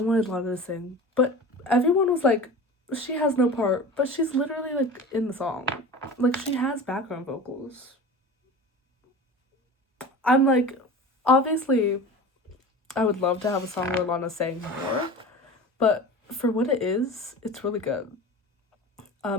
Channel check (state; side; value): normal; both; correlation 0.34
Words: Lana to sing, but everyone was like, she has no part, but she's literally like in the song. Like she has background vocals. I'm like, obviously I would love to have a song where Lana sang more, but for what it is, it's really good.